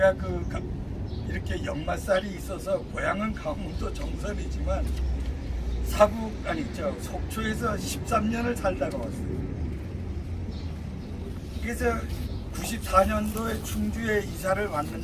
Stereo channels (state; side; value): identical; both; correlation 1.00